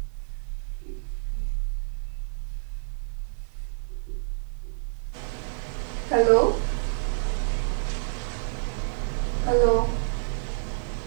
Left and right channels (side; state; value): left; silent; 59 dB below the other